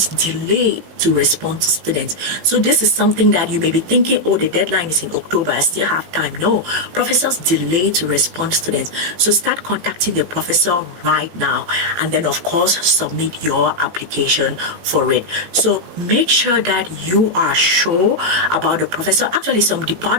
delay to respond to students. So this is something that you may be thinking, oh, the deadline is in October, I still have time. No, professors delay to respond to students. So start contacting the professor right now, and then of course submit your application for it. So make sure that you are sure about the professor. Actually, some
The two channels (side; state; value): left; late; 18 ms